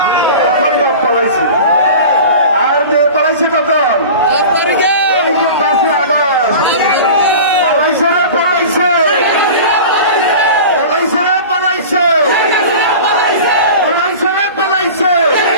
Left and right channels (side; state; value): both; inverted; correlation -0.36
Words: তখন বাপ পালাইছে। আর মেয়ে পালাইছে তখন 5 আগস্ট পালাইছে রে পালাইছে পালাইছে রে পালাইছে পালাইছে রে পালাইছে।